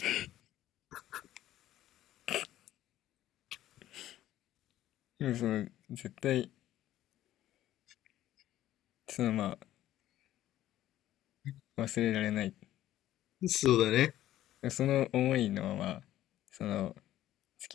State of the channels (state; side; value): quieter; right; 13.5 dB